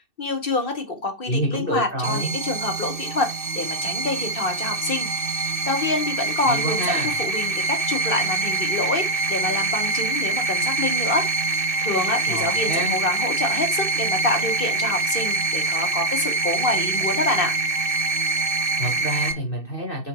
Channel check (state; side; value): late; right; 2.6 ms